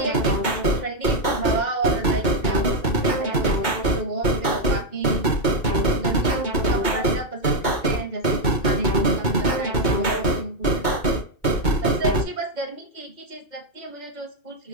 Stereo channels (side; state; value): right; late; 2.2 ms